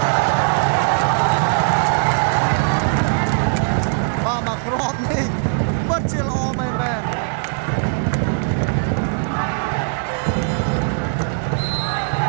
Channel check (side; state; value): left; silent; 58 dB below the other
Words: បាទមកគ្រាប់នេះពិតជាល្អមែនបាទ